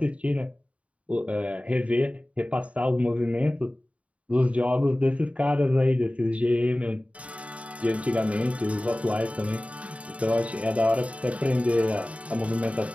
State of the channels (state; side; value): late; left; 0.065 ms